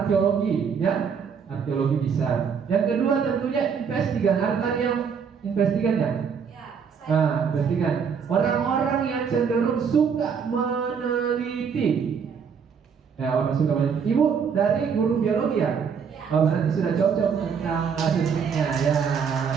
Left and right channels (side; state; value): left; quieter; 6.6 dB